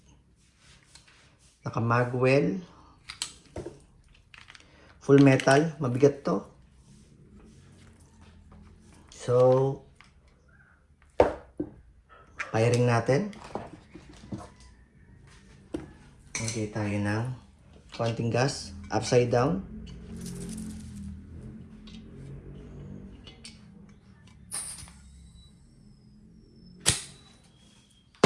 Naka-magwell. Full metal. Mabigat to. So, firing natin. Okay, tayo ng konting gas. Upside down.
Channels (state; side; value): identical; both; correlation 1.00